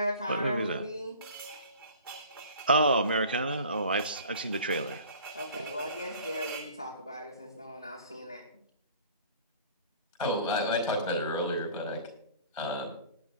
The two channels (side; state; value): both; inverted; correlation -0.45